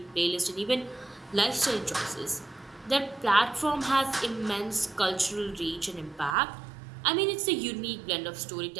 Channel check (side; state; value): left; drops out; at 6.4 s